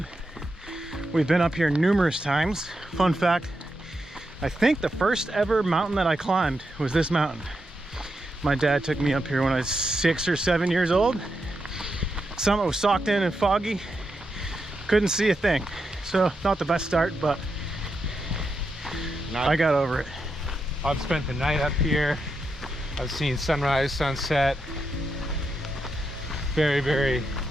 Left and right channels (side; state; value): both; normal; correlation 0.85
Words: We've been up here numerous times. Fun fact, I think the first ever mountain that I climbed was this mountain. My dad took me up here when I was 6 or 7 years old. Summit was socked in and foggy. Couldn't see a thing. So not the best start, but I got over it. I've spent the night up here. I've seen sunrise, sunset. Very, very